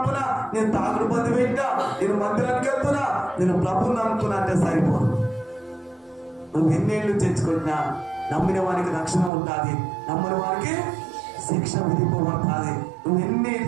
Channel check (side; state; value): left; drops out; at 9.3 s